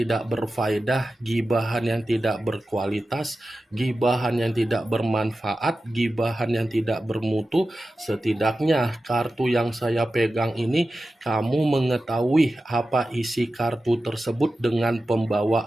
berfaedah, gibahan yang tidak berkualitas, gibahan yang tidak bermanfaat, gibahan yang tidak bermutu. Setidaknya kartu yang saya pegang ini kamu mengetahui apa isi kartu tersebut dengan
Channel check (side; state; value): both; normal; correlation 0.93